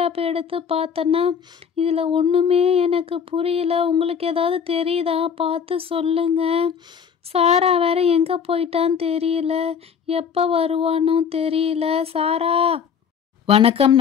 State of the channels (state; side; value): quieter; right; 7.1 dB